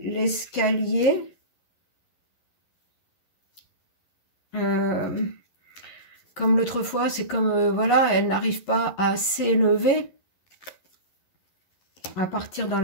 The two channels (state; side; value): late; right; 11 ms